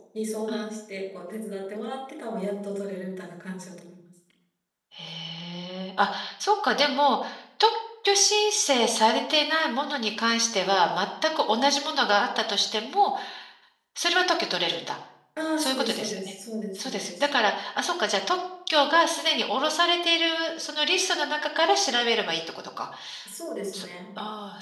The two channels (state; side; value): identical; both; correlation 1.00